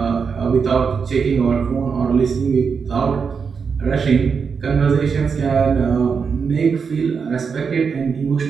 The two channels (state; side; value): quieter; left; 5.8 dB